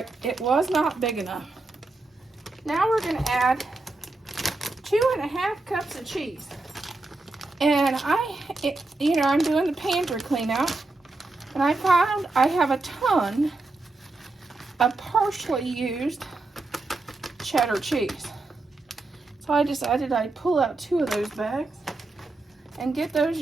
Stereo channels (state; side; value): quieter; left; 3.2 dB